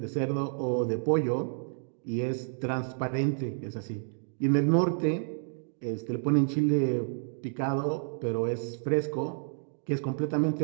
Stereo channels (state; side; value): silent; left; digital silence